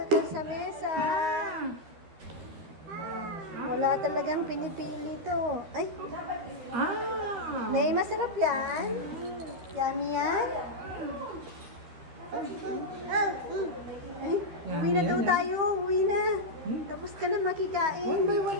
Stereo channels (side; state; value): left; late; 13 ms